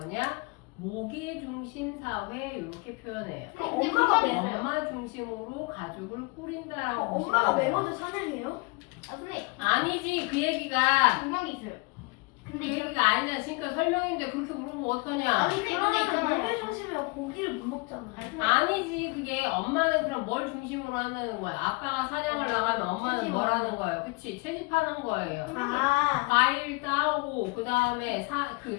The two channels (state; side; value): quieter; right; 27.9 dB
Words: 모계 중심 사회 이렇게 표현해요. 엄마 중심으로 가족을 꾸린다라고 엄마가 보시면 돼요. 매모도 사냥해요? 아니지 그 얘기가 분명히 있어요. 그 얘기가 아니잖아. 지금까지 설명인데 그렇게 물으면 어떡하냐? 그러면 모계 중심이면 고기를 못 먹잖아. 아니지 그게 엄마는 그럼 뭘 중심으로 한다는 거야? 아빠가 사냥을 나가면 엄마는 뭘 하는 거예요? 그치? 채집하는 거예요. 과일 따오고 그 다음에 그